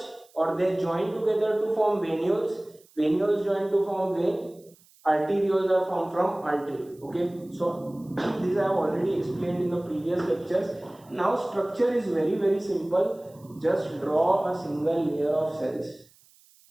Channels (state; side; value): noise; right; hiss, 29 dB below the sound